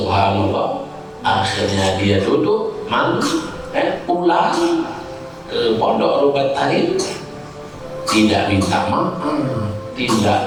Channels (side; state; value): both; identical; correlation 1.00